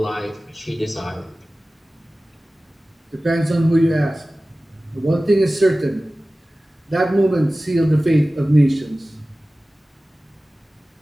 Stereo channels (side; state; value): both; normal; correlation 0.97